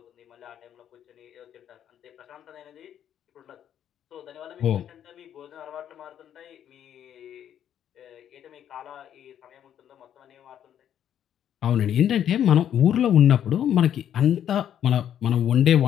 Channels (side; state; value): right; quieter; 10.0 dB